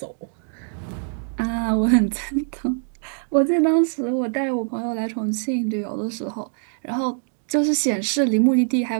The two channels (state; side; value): silent; left; 62 dB below the other